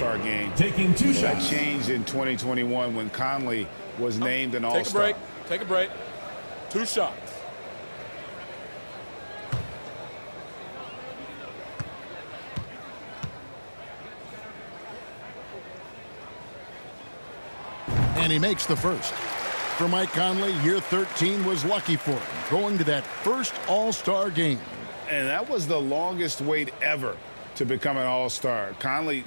game. Taking 2 That shots. changed in 2021 when Conley was named an All-Star. Take a break. 2 shots. And he makes the first. For Mike Conley, year 13 was lucky for him, going to that first All-Star game. And that was the longest wait ever to become an All-Star. Conley,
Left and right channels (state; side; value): inverted; both; correlation -1.00